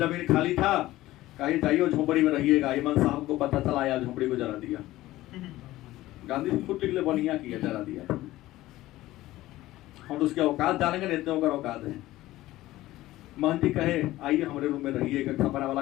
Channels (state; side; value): quieter; right; 16.4 dB